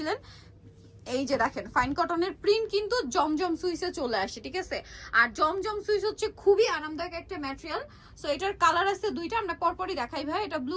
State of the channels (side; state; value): both; identical; correlation 1.00